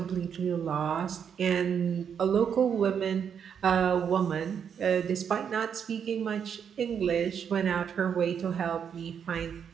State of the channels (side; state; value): left; quieter; 7.7 dB